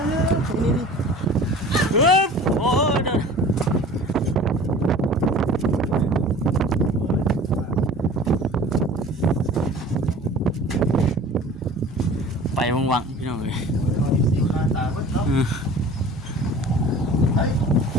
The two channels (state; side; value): normal; both; correlation 0.43